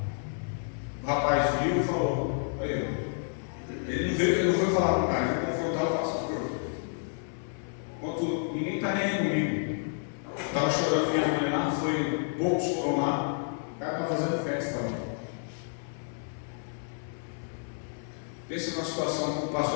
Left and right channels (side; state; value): right; silent; 58 dB below the other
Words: O rapaz viu e falou, ele não foi falar com o cara, ele confrontar o pastor. Enquanto ninguém está nem aí comigo. Estava chorando minha mãe lá, poucos foram lá, o cara está fazendo festa lá. Pensa numa situação que o